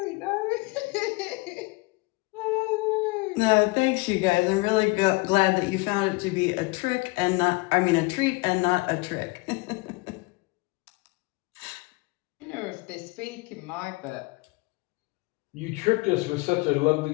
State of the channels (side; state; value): right; quieter; 25.2 dB